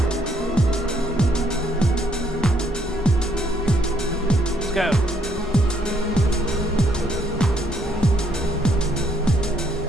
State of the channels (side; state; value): both; normal; correlation 0.70